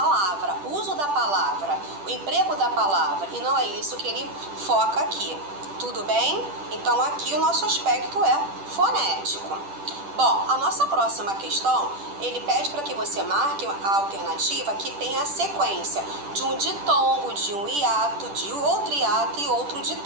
o uso da palavra, o emprego da palavra, e não é isso que ele foca aqui. Tudo bem? Então, aqui o nosso aspecto é fonético. Bom, a nossa próxima questão, ele pede para que você marque a alternativa que tem a sequência de um ditongo, de um hiato, de outro hiato e outro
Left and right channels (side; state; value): left; late; 10 ms